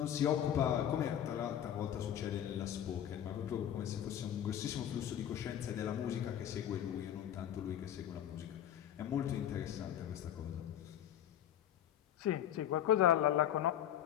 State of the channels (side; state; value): right; quieter; 10.5 dB